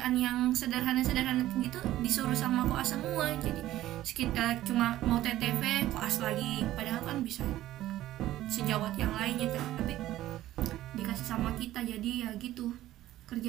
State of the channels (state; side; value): quieter; left; 14.5 dB